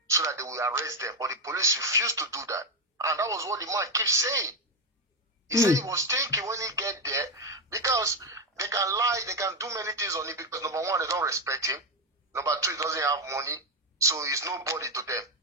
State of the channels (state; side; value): normal; both; correlation 0.08